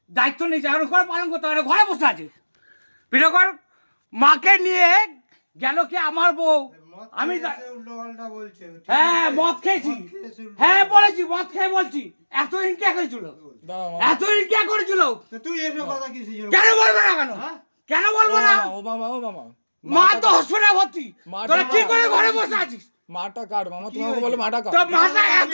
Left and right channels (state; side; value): inverted; both; correlation -1.00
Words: দায়িত্ব নিয়েছে, এখন করে পালন করতে পারে, ঘরে বসে আছে। ভিডিও কর। মাকে নিয়ে গেল কি আমার বউ, আমি হ্যাঁ মদ খেয়েছি, হ্যাঁ বলেছি মদ খেয়ে বলছি। এতদিন কে করেছিল, এতদিন কে করেছিল? তুই এসব কথা কি কেন বলবো না? কেন কেন বলবো না? ও মামা ও মামা মা তো হসপিটালে ভর্তি, তোরা কি করে ঘরে বসে আছিস? মাটা কার মামা, তোমাকে বলো মাটা কার? তো মাটা